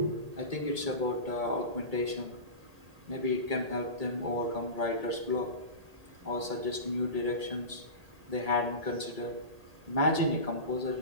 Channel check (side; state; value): left; late; 1.8 ms